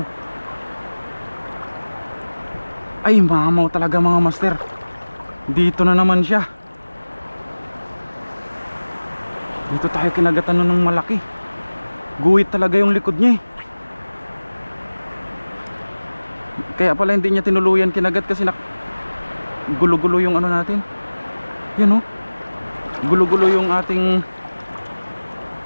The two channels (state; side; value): inverted; both; correlation -1.00